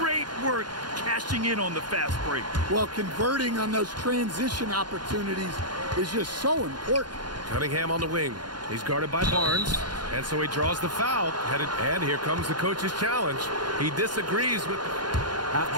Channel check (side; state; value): left; late; 0.71 ms